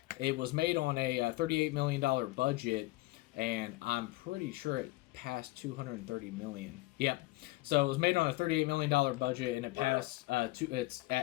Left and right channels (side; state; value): right; quieter; 20.0 dB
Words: it was made on a $38 million budget, and I'm pretty sure passed 230 million. Yep. So it was made on a $38 million budget, and it passed.